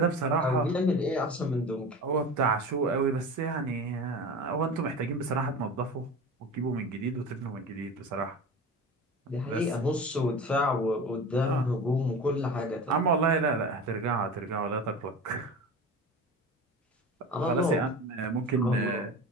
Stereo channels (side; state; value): both; normal; correlation 0.33